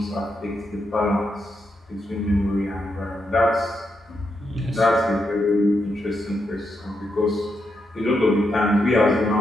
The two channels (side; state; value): both; normal; correlation 0.83